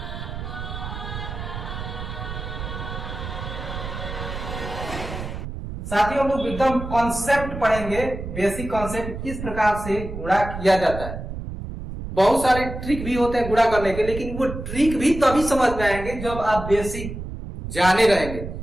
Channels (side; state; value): right; noise; rumble, 8 dB below the sound